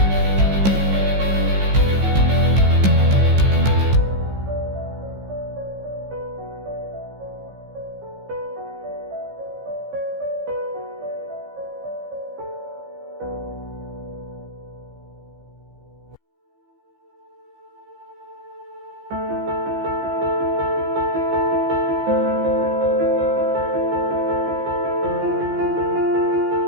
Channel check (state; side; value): late; left; 15 ms